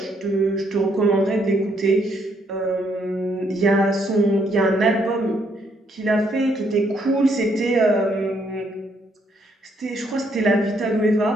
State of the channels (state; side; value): normal; both; correlation 0.71